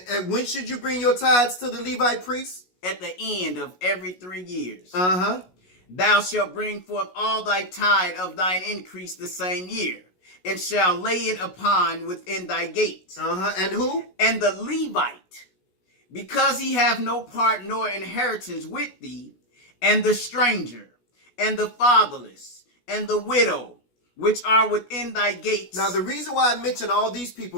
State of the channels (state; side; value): late; right; 16 ms